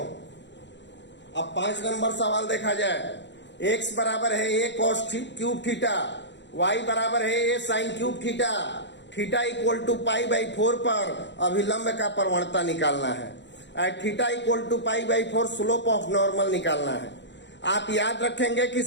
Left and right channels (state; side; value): late; right; 0.52 ms